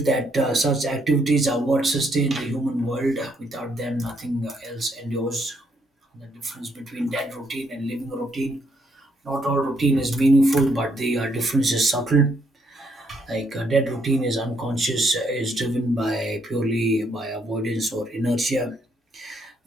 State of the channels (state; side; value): normal; both; correlation 0.72